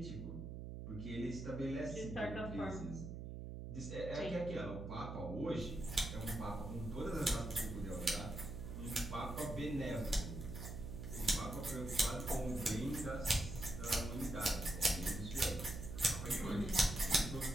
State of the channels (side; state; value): right; noise; hum, 7 dB below the sound